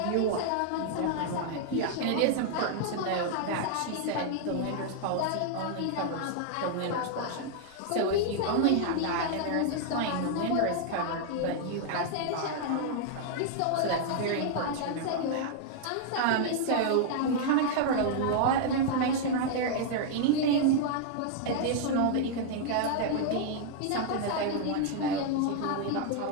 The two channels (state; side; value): different; both; correlation -0.01